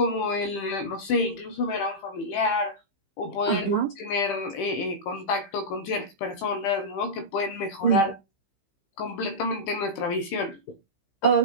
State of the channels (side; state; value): right; late; 15 ms